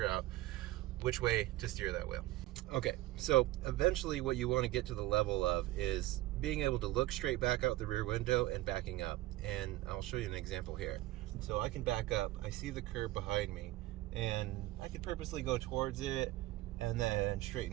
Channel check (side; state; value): left; quieter; 17.2 dB